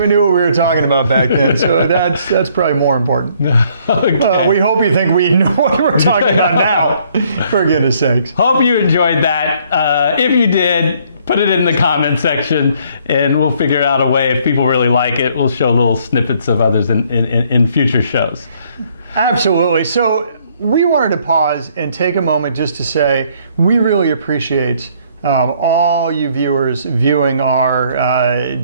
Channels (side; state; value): both; inverted; correlation -0.64